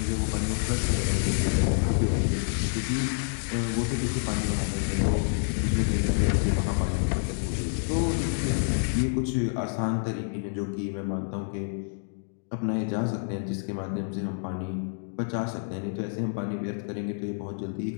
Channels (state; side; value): silent; right; digital silence